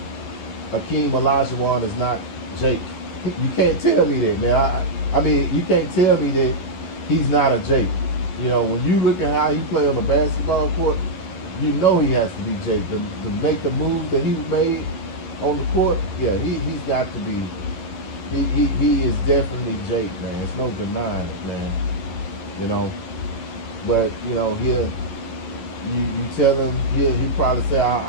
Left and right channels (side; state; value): right; late; 11 ms